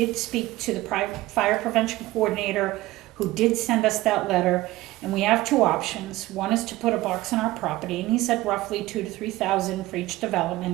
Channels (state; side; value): quieter; left; 18.0 dB